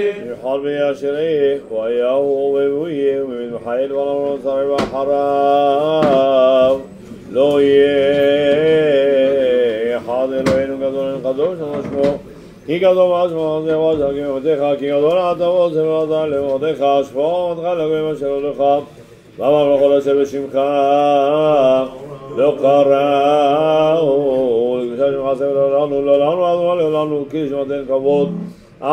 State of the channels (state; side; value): identical; both; correlation 1.00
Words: יחל וישריך ויהו ובויה ומן חיל ולמרות שרי ואחריו לא יהיה אחד אלוהינו גדול קדוש ושמו כי גדול משמו זה ועזר כמותיך כי גדול אתה ועוזר ועזר למותיך שפור עמדך לגויים אשר הולך ואמר בכל אשר בשמך לא קראו לקדושה שמך עשה ולעולנו לעולנו כי שמתן כבוד